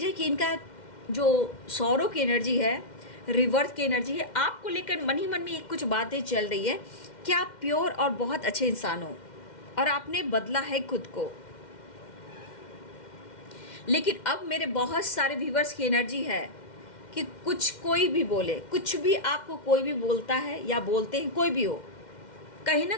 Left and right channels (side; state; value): right; late; 2.1 ms